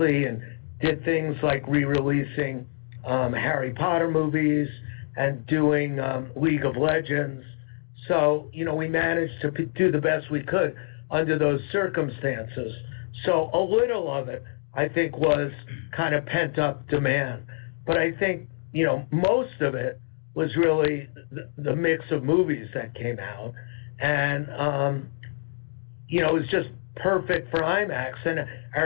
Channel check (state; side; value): silent; right; digital silence